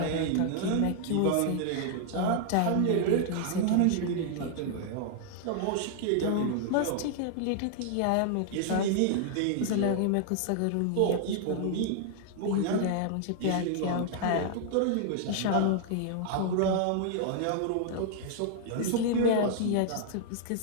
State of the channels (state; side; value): different; both; correlation -0.01